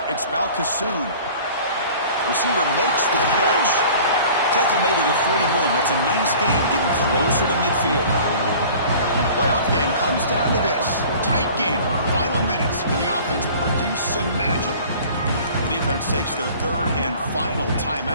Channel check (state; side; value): inverted; both; correlation -0.46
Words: It's Balcassoon. Receiver makes the catch. Tackle made at the 41. That's a nice gain, getting closer to midfield. Playoff game comes down to this. Tight game. Final minutes. Can the offense produce some magic? The defense takes their third and final